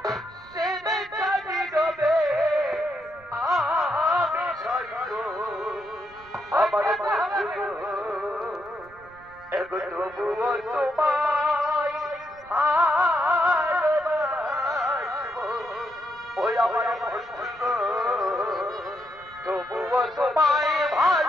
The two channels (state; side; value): noise; right; rumble, 26 dB below the sound